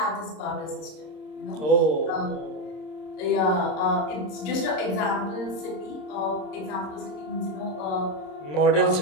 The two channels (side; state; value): right; late; 26 ms